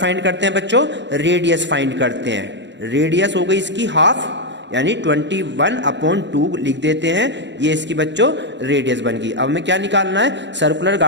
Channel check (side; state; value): left; late; 0.52 ms